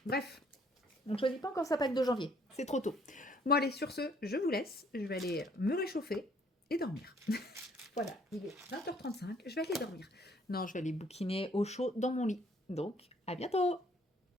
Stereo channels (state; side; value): normal; both; correlation 0.63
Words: Bref, on ne choisit pas encore sa Pâques de janvier. C'est trop tôt. Bon, allez, sur ce, je vous laisse. Je vais aller me réchauffer et dormir. Voilà, il est 20h35. Je vais aller dormir. Non, je vais aller bouquiner au chaud dans mon lit. Donc, à bientôt!